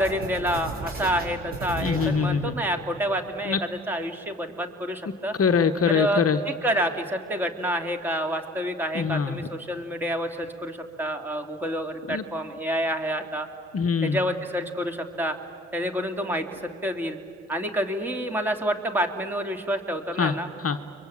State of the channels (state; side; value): normal; both; correlation 0.49